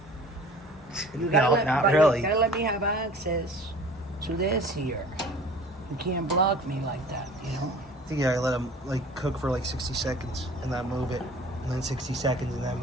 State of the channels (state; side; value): normal; both; correlation 0.46